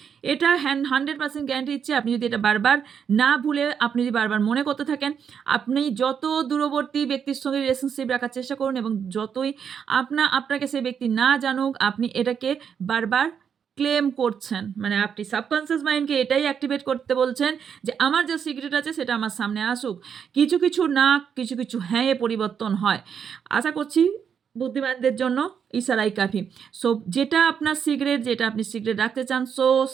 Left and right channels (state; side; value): quieter; left; 7.4 dB